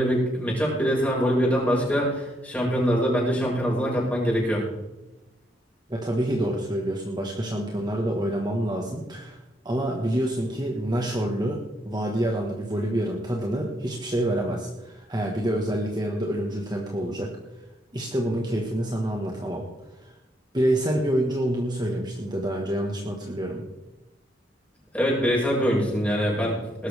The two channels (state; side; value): normal; both; correlation 0.75